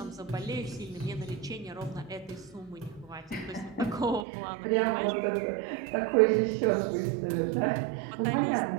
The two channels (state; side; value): drops out; left; at 4.2 s